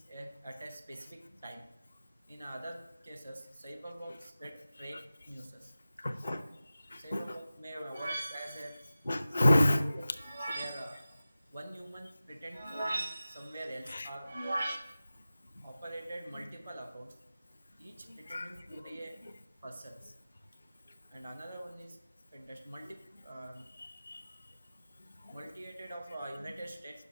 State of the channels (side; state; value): both; inverted; correlation -0.96